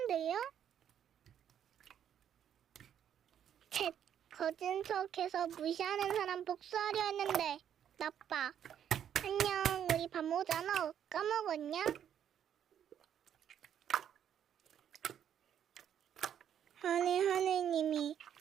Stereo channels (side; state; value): left; quieter; 9.4 dB